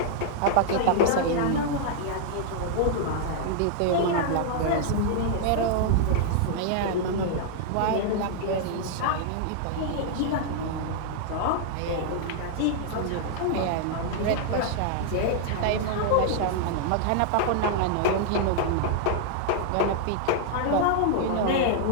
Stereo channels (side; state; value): both; different; correlation -0.01